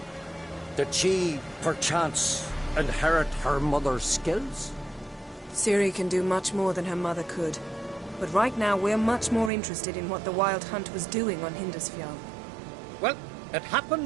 Did she, perchance, inherit her mother's skills? Ciri can do much more than her mother could. But right now, we're much more interested in what the Wild Hunt was doing on Hindersfjall. Well, it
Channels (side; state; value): left; drops out; at 9.5 s